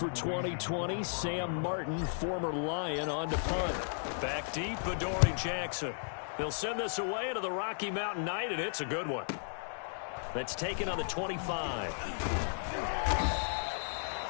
2020, Sam Martin, former Lion, on to punt. Back deep, Adoree Jackson. They'll send this away to the Rocky Mountain Knight, and it's a good one. That's taken on the 25.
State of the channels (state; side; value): silent; right; digital silence